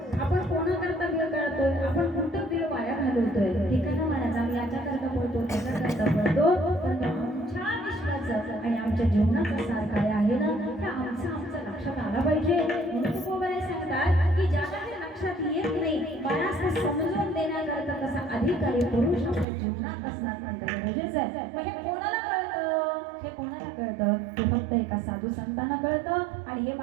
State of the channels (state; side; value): drops out; left; at 19.5 s